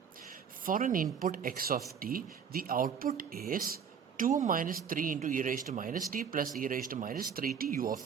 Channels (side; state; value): left; quieter; 7.2 dB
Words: For an input x of t, the output is 2 minus 3 into e raised to minus t plus e raised to minus 3t u